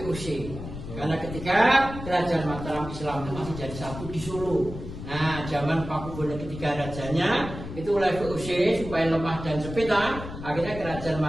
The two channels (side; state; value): left; noise; rumble, 10 dB below the sound